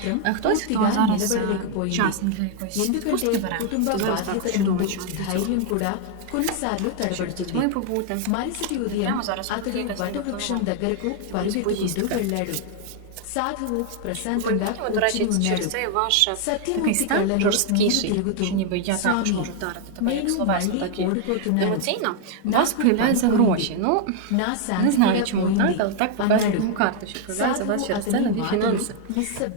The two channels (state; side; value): different; both; correlation 0.00